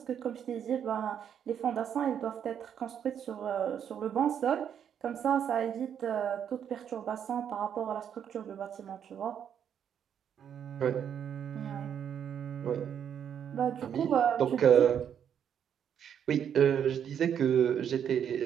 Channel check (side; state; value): left; quieter; 8.7 dB